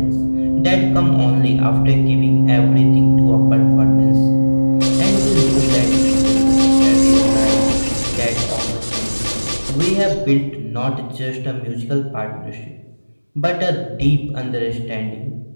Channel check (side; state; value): both; inverted; correlation -1.00